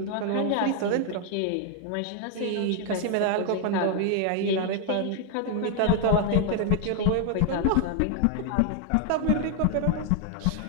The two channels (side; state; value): both; different; correlation 0.00